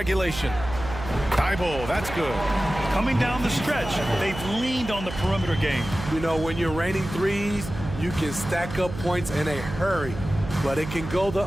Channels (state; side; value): noise; right; hum, 10 dB below the sound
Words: Thibault, that's good. Coming down the stretch, they've leaned on the perimeter game. You know, when you're raining threes, you can stack up points in a hurry, but it can go the